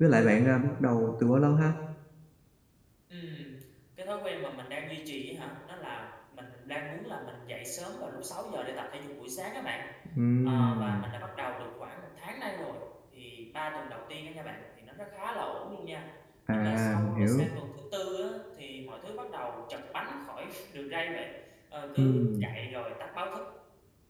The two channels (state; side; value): identical; both; correlation 1.00